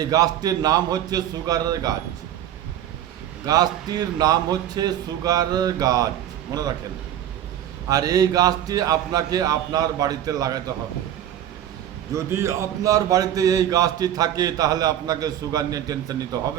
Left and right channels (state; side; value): quieter; left; 11.1 dB